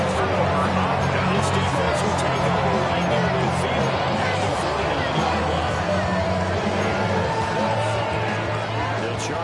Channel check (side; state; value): both; identical; correlation 1.00